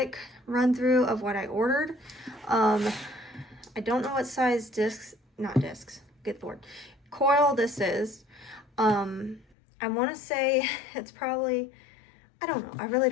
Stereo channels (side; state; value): right; drops out; at 9.6 s